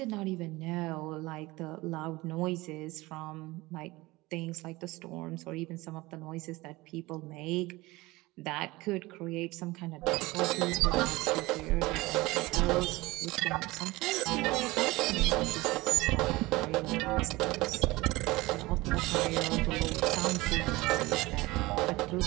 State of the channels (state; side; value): quieter; left; 20.8 dB